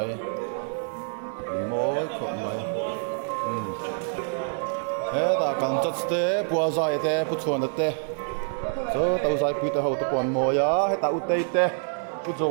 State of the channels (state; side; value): silent; left; digital silence